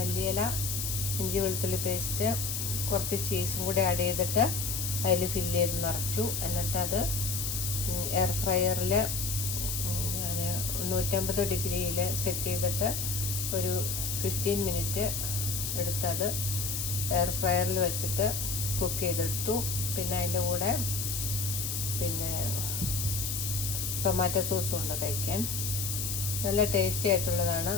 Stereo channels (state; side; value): noise; left; hiss, 2 dB below the sound